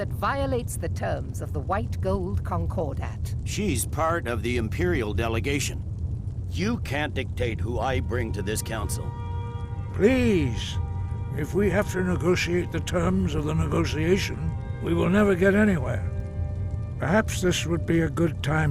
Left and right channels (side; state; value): both; identical; correlation 1.00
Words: violates the terms of the White Gold Concordat. She's part of the Imperial delegation. You can't dictate who I bring to this council. Please, if we have to negotiate the terms of the negotiation, we will never get anywhere. Perhaps this would be a good